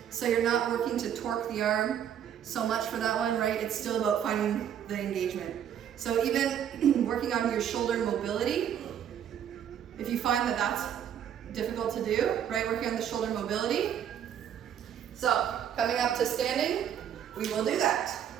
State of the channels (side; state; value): left; quieter; 9.4 dB